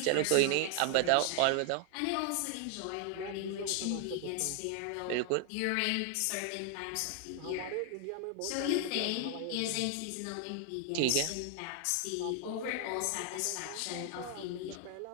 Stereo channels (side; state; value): both; different; correlation 0.00